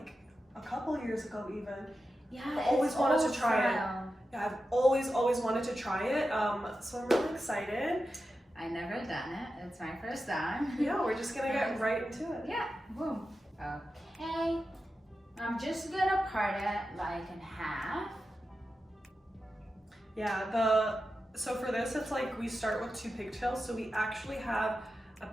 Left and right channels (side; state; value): both; normal; correlation 0.91